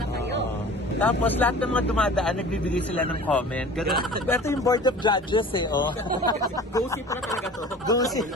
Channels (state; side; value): normal; both; correlation 0.42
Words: kayo. Tapos lahat ng mga dumadaan, nagbibigay sila ng comment. Ganun. Ito yung board of judges eh, oh. Go-see pala talaga to.